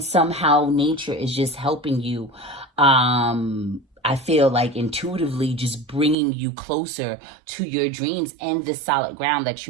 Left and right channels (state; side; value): drops out; left; at 6.2 s